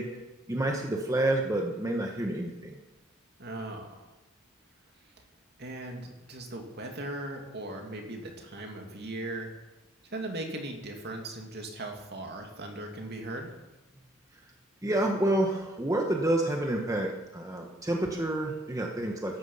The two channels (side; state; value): both; normal; correlation 0.65